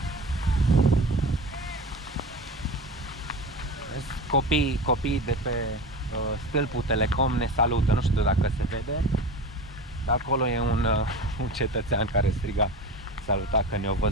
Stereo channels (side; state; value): both; normal; correlation 0.31